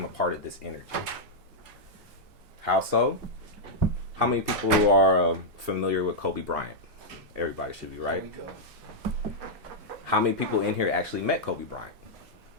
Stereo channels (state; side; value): late; left; 2.7 ms